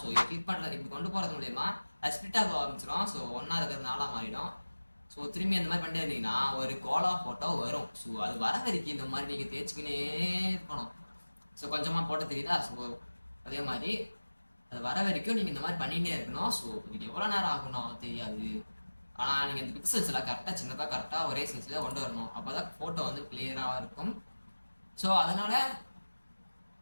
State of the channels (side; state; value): both; inverted; correlation -1.00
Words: ஸோ இது கிளிக் பண்ணுறது இப்படி கொண்டு போகிறது மூலயமா அது ஸ்பிட் ஆக ஆரம்பிச்சிடும். ஸோ ஒன்றா இருக்கிறது நாளாக மாறிடும். ஸோ திரும்பி அந்த மாதிரி பண்ணிட்டு இருந்தீங்கன்னா ஒரு கோலா ஃபோட்டோ வரும். ஸோ அது வர வரைக்கும் இந்த மாதிரி நீங்கள் தேய்ச்சிக்கினே இருக்கணும். ஸோ கொஞ்சமாக போட்டு தெரியுதா? ஸோ அதே மாதிரி அது வர வரைக்கும் நீங்கள் இந்த மாதிரி பண்ணிகிட்டே இருக்கணும். ஸோ இதுக்கு எவ்வளோ நேரம் ஆகணும் தெரியாது. ஆனால் நீங்கள் இந்த பிக்சல்ஸ் எல்லாம் கரெக்டாக சின்னதாக கரெக்டாக ஒரே சைஸில் கொண்டு வரணும். அப்போ தான் ஃபோட்டோ வந்து கிளியராக இருக்கும். ஸோ அதனால்